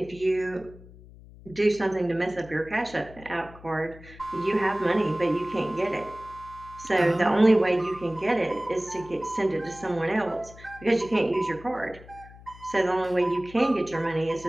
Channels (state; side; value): noise; left; hum, 20 dB below the sound